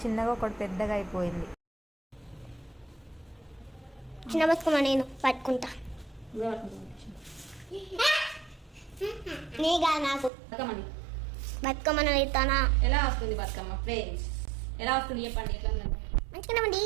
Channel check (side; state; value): left; drops out; at 10.3 s